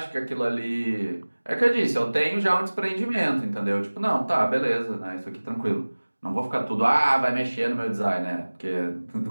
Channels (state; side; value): inverted; both; correlation -1.00